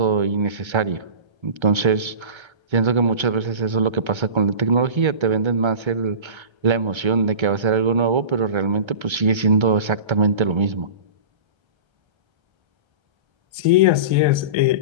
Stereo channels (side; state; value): left; late; 1.3 ms